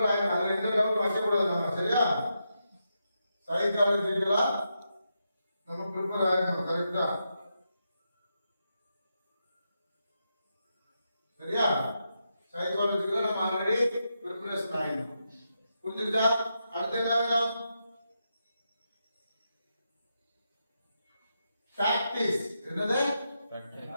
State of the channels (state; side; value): inverted; both; correlation -0.85